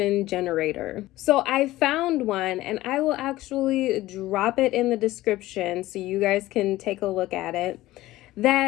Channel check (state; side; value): quieter; right; 16.7 dB